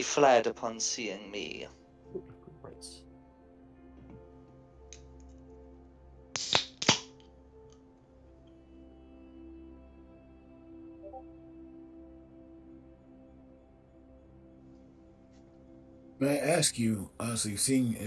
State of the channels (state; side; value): identical; both; correlation 1.00